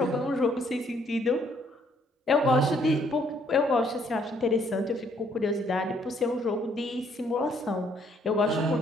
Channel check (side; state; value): both; normal; correlation 0.67